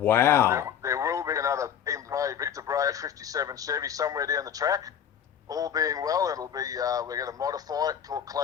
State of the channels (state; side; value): quieter; right; 8.7 dB